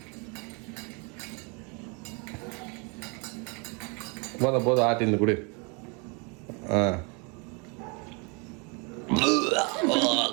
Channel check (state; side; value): quieter; left; 32.6 dB